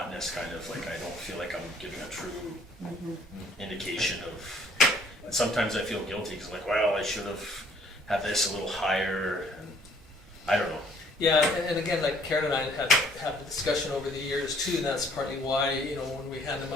kind of like I don't feel like I'm giving a true indication of. And sometimes I feel guilty because, like, well, I should have had this a little higher, and I don't know. Yeah, and again, like Karen and I have a discussion over the years too, and that's partly why, you know, when we hand them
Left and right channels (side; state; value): both; normal; correlation 0.60